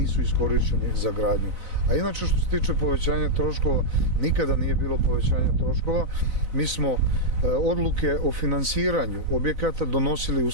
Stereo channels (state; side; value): late; left; 4.0 ms